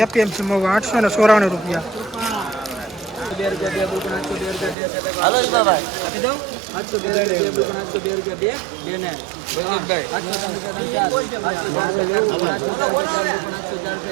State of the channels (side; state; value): left; drops out; at 4.8 s